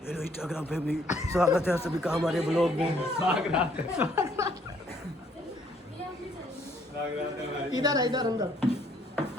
हेलो इंस्टाग्राम फैमिली, स्वागत है सभी का हमारे ब्लॉग में। इधर अंदर।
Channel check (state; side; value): normal; both; correlation 0.65